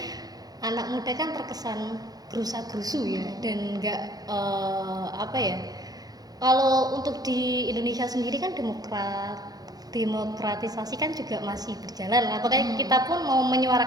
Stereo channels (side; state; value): left; late; 0.19 ms